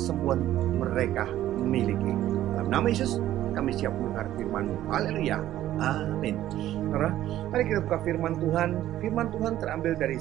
mereka memiliki. Dalam nama Yesus kami siap mendengar firman-Mu. Haleluya, amin. Saudara, mari kita buka firman Tuhan. Firman Tuhan terambil dari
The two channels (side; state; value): left; quieter; 13.2 dB